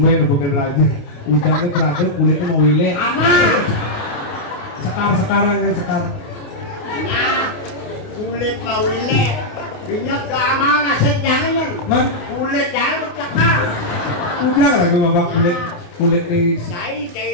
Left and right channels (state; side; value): late; right; 29 ms